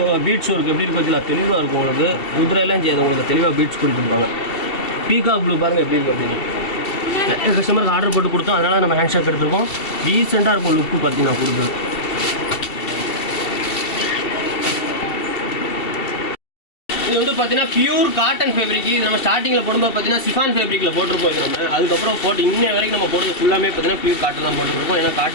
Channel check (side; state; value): right; late; 2.7 ms